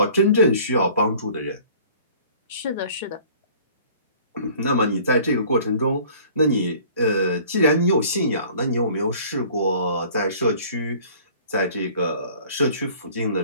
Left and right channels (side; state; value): both; inverted; correlation -0.50